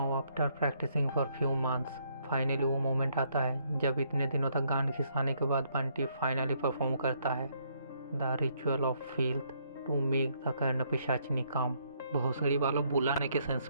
after practising for few months, finally वो मोमेंट आता है जब इतने दिनों तक गान खिसाने के बाद बंटी फाइनली परफॉर्म करता है the ritual of field to make the Karna Pishachini come. भोसड़ी वालों बुलाने के सेंस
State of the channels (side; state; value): both; inverted; correlation -0.70